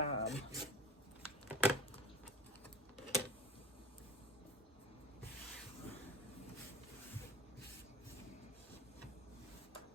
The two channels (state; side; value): normal; both; correlation 0.36